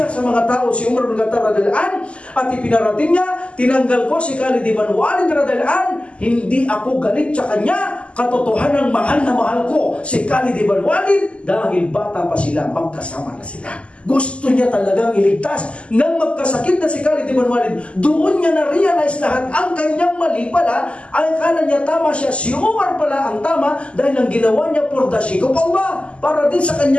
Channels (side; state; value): right; late; 0.057 ms